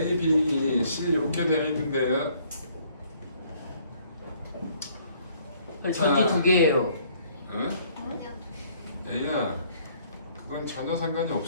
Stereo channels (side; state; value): both; inverted; correlation -0.63